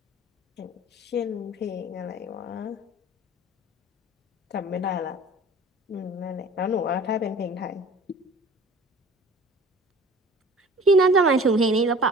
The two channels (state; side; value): normal; both; correlation 0.45